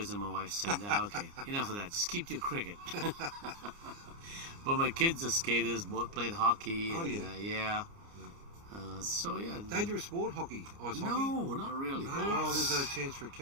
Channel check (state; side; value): late; left; 29 ms